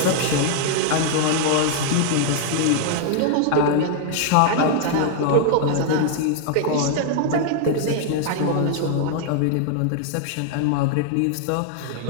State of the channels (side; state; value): both; different; correlation 0.00